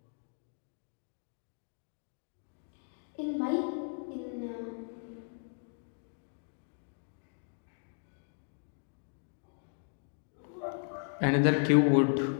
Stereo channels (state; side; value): silent; right; 54 dB below the other